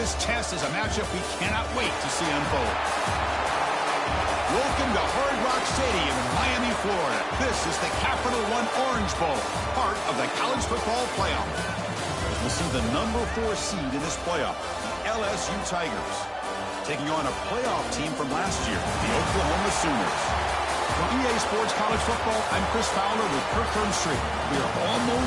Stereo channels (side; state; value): both; identical; correlation 1.00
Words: test is a matchup we cannot wait to see unfold. Welcome to Hard Rock Stadium in Miami, Florida. This is the Capital One Orange Bowl, part of the college football playoff. We'll see the number 4 seed in this playoff, the LSU Tigers, taking on a playoff team from last year, the Oklahoma Sooners. For EA Sports College Football, I'm Chris Fowler with Kirk Street. We are